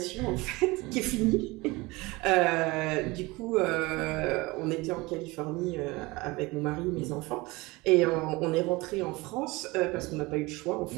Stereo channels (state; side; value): quieter; left; 22.8 dB